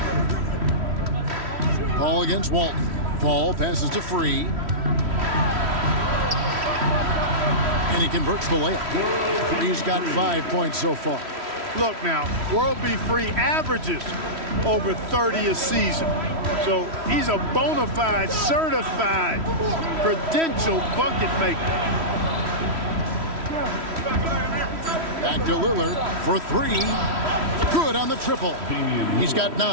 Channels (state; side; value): late; left; 3.1 ms